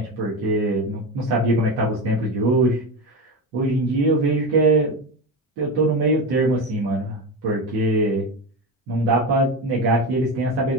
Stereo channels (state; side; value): normal; both; correlation 0.20